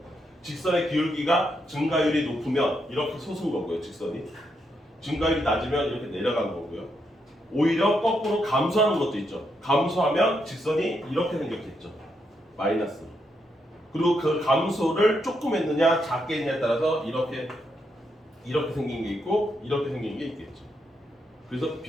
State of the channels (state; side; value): normal; both; correlation 0.80